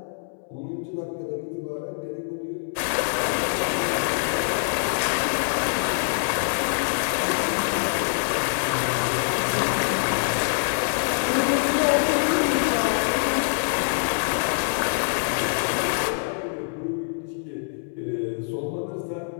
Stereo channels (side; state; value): right; silent; 62 dB below the other